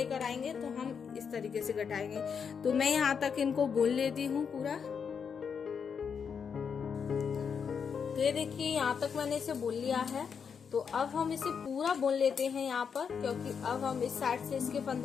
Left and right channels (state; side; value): quieter; right; 6.6 dB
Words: आएंगे तो हम इस तरीके से घटाएंगे। तो मैं यहाँ तक इनको बुन लेती हूँ पूरा। तो ये देखिए यहाँ तक मैंने इसे बुन लिया है। तो अब हम इसे पूरा बुन लेते हैं यहाँ पर, क्योंकि अब हम इस साइड से इसके